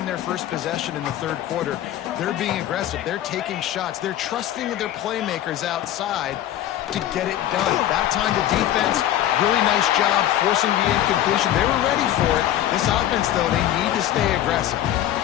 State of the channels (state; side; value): quieter; right; 12.4 dB